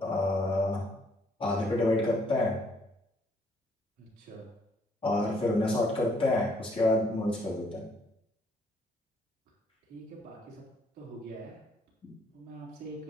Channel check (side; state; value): both; normal; correlation 0.67